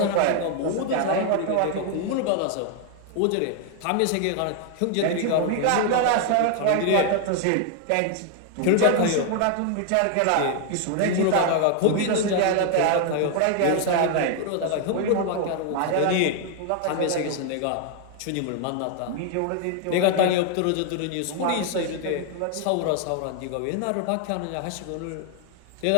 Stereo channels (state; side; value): different; both; correlation 0.00